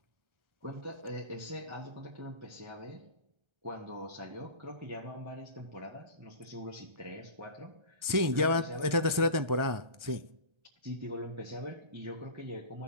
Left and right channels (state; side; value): late; left; 1.3 ms